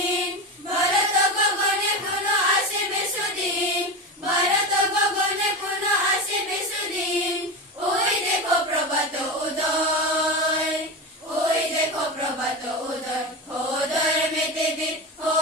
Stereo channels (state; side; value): normal; both; correlation 0.21